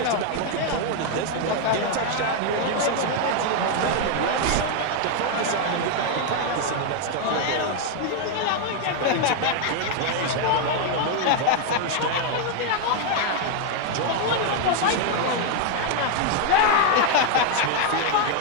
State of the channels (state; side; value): different; both; correlation 0.01